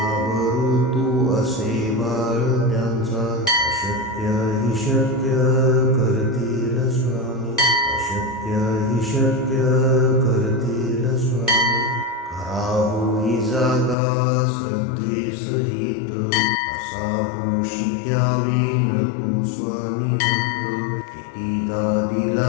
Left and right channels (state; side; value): drops out; right; at 14.0 s